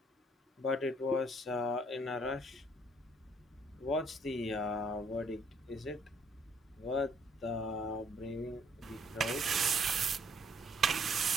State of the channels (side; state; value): both; normal; correlation 0.64